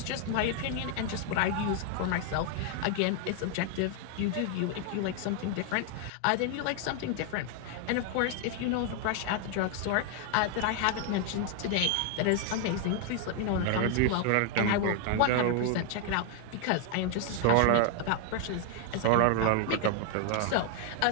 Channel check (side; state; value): both; different; correlation 0.00